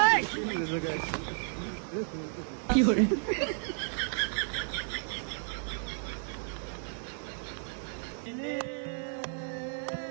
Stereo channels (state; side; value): silent; left; 56 dB below the other